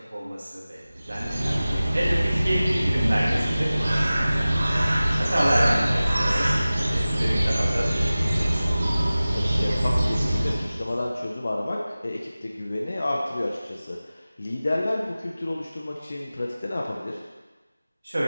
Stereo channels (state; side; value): inverted; both; correlation -0.97